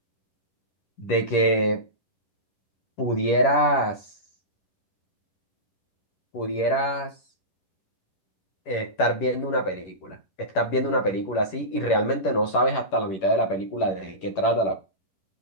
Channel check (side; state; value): right; late; 10 ms